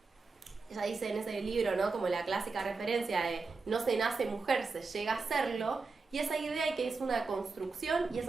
ella dice en ese libro, ¿no?, como la clásica referencia de no se nace mujer, se llega a serlo, y esa idea de que es una construcción, y es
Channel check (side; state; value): left; quieter; 4.2 dB